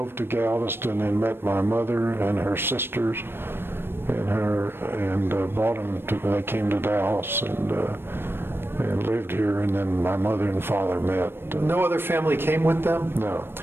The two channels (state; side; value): late; left; 0.11 ms